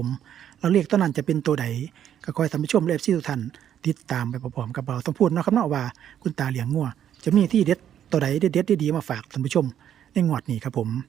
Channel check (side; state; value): left; quieter; 10.0 dB